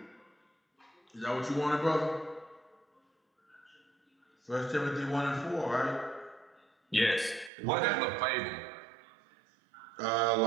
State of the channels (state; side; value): drops out; left; at 7.5 s